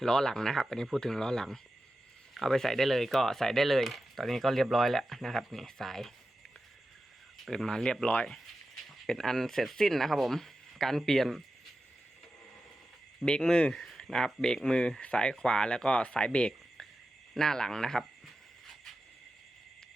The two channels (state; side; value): normal; both; correlation 0.92